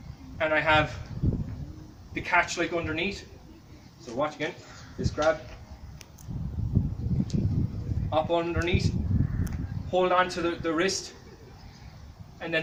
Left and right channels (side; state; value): both; identical; correlation 1.00